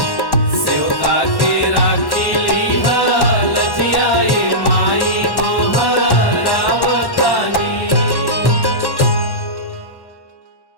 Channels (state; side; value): late; right; 1.1 ms